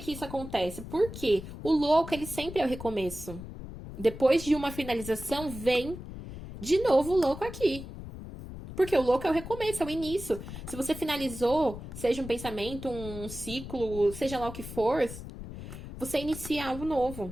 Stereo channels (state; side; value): noise; left; rumble, 11 dB below the sound